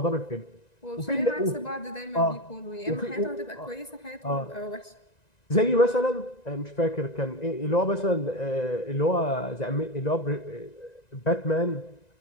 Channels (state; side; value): late; right; 1.9 ms